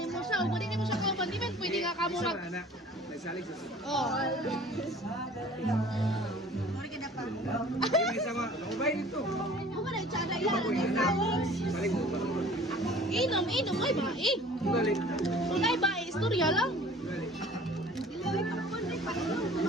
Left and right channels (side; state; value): both; normal; correlation 0.48